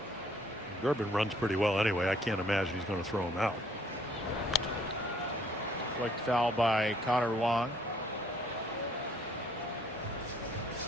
it. Durbin runs pretty well anyway. I can't imagine he's going to throw him out. Flicked foul by Connor Wong.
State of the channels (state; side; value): normal; both; correlation 0.63